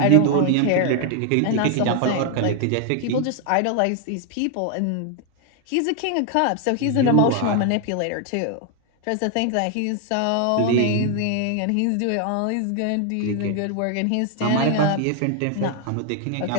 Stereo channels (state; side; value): different; both; correlation 0.00